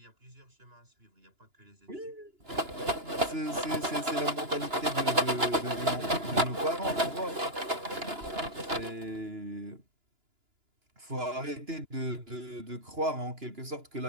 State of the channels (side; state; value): left; late; 2.9 ms